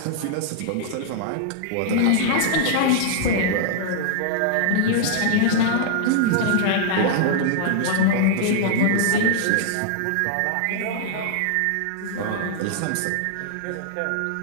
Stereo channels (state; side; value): different; both; correlation -0.01